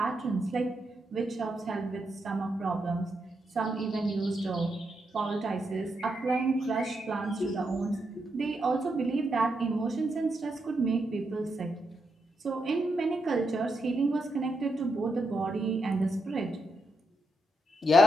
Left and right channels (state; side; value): normal; both; correlation 0.83